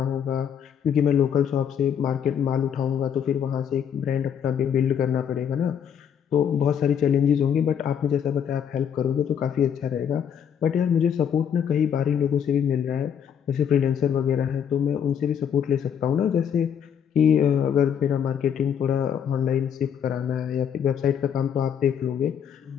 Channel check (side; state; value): right; quieter; 8.2 dB